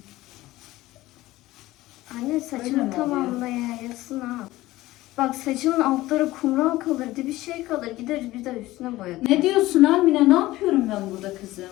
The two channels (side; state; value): right; quieter; 17.4 dB